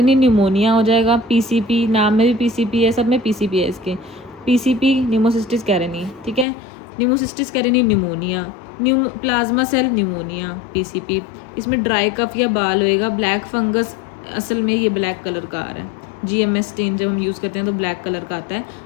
न्यूमोनिया हो जाएगा, PCP, नाम में भी PCP है, सब में PCP है इसके, PCP न्यूमोसिस्टिस कैरेनी, ठीक है। Pneumocystis carinii pneumonia, plasma cell pneumonia, PCP। इसमें ड्राई कफ या बाल होएगा, ब्लैक फंगस, असल में ये ब्लैक कलर का आ रहा है, GMS स्टेन जब हम यूज़ करते हैं तो ब्लैक कलर का आता है।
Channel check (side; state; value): right; drops out; at 6.5 s